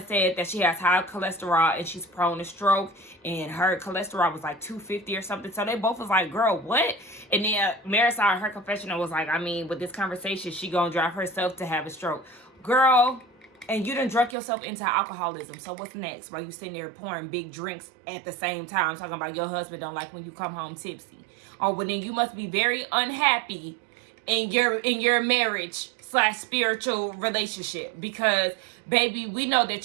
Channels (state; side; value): drops out; left; at 14.4 s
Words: said that she has high cholesterol and she's prone to stroke, and her cholesterol was like 250 or something. So they both was like, girl, what? And then Marisol in her confessional was like, I mean, with this conversation, she gonna drive herself to have a stroke. Girl, and you done drunk yourself into alcoholism. So what's next? While you sitting there pouring big drinks at the same time, talking about your husband don't like when you come home tipsy. Oh, well then you must be very unhappy in your marriage / spiritual relationship, because baby, we know